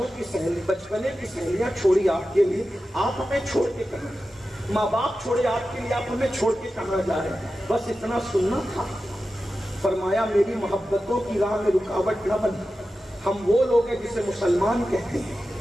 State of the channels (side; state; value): both; normal; correlation 0.93